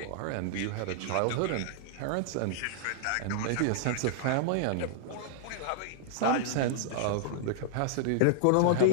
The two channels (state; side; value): different; both; correlation -0.01